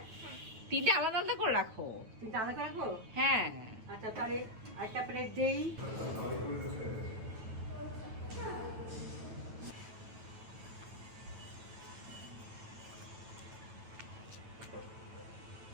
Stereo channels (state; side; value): late; left; 9.1 ms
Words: তিনটা আলাদা আলাদা করে রাখো। তিনটা আলাদা রাখবো। হ্যাঁ আচ্ছা তাহলে একটা প্লেট দেই।